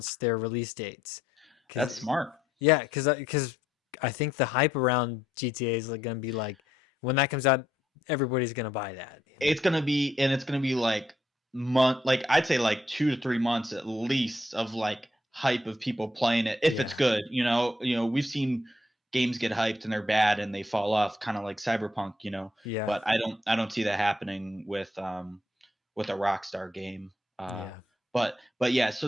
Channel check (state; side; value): normal; both; correlation 0.74